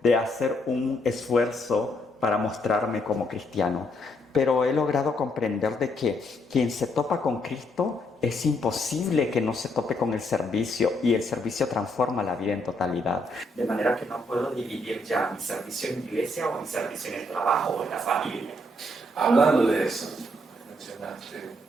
de hacer un esfuerzo para mostrarme como cristiano. pero he logrado comprender de que quien se topa con Cristo es imposible que no se tope con el servicio, y el servicio transforma la vida en totalidad. De manera que no puedo dividir ya mi servicio en iglesia o mi servicio en el trabajo o en la familia. Hablando de eso, mencionaste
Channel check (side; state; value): both; normal; correlation 0.73